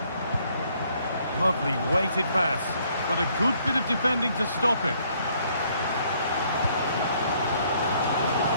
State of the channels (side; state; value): both; inverted; correlation -0.66